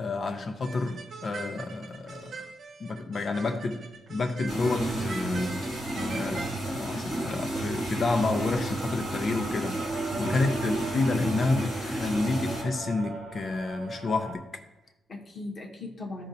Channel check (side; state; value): both; normal; correlation 0.87